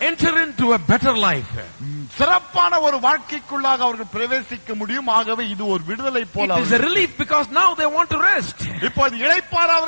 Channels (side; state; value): both; inverted; correlation -1.00